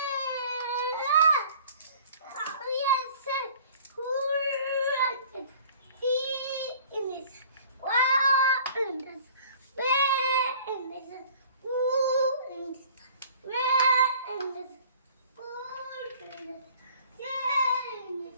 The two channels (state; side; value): inverted; both; correlation -0.50